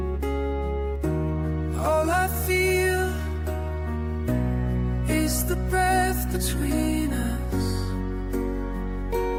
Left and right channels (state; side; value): identical; both; correlation 1.00